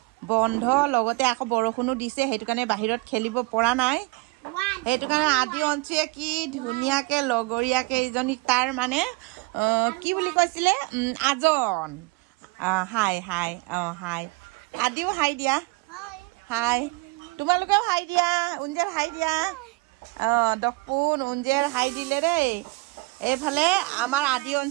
বন্ধ লগতে আকৌ বৰষুণো দিছে সেইটো কাৰণে বাহিৰত খেলিব পৰা নাই সেইটো কাৰণে আদি অঞ্চুয়ে কি ধুনীয়াকে লগৰীয়াকে ইজনীক তাৰ মানে কি বুলি কৈছিলে আজন হাই হাই হাই আদিও হাই দিয়া হাই তোমালোকেও হাই দিয়া উঞ্জেৰ হাই দিয়া দকপুন উঞ্জেৰ হাই দিলে দেই এইফালে আমাৰ আদি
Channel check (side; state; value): left; quieter; 25.0 dB